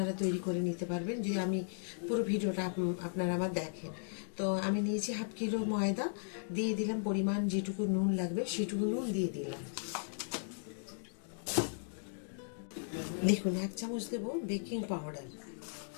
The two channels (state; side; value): silent; right; digital silence